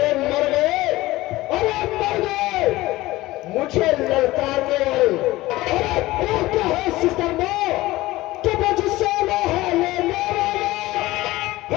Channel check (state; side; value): quieter; right; 18.3 dB